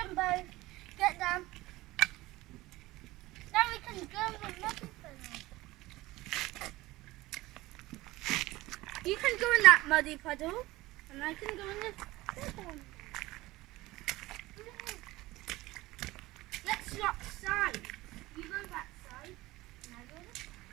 both. Get them. Now we can go in the muddy puddle. You can go in that muddy puddle, and I can go in the big one. Let's swap sides. You go that side, and I go this side.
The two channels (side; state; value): left; quieter; 18.9 dB